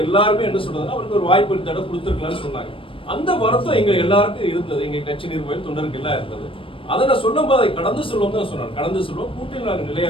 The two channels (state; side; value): late; right; 0.25 ms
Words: எல்லாருமே என்ன சொல்றதுன்னா அவருக்கு ஒரு வாய்ப்பு இந்த தடவை கொடுத்துருக்கலாம்னு சொன்னாங்க. அந்த வருத்தம் எங்க எல்லாருக்கும் இருந்தது, எங்க கட்சி நிர்வாகிகள் தொண்டருக்கு எல்லாம் இருந்தது. அதை நான் சொல்லும் போது அதை கடந்து சொல்லுவோம் தான் சொன்னாங்க. கடந்து சொல்லுவோம், கூட்டில் நாங்கள் நிலையா